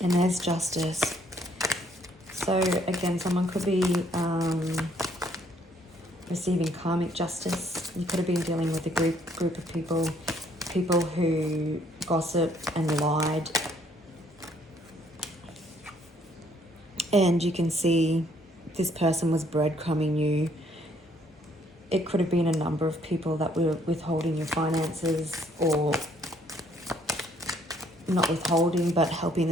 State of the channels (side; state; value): both; normal; correlation 0.66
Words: there's justice. So again, someone could be receiving karmic justice. You could have been dealing with a group of people who gossip and lied. And you can see this person was breadcrumbing you. It could have been a number of people that were withholding your finances, or not withholding, but helping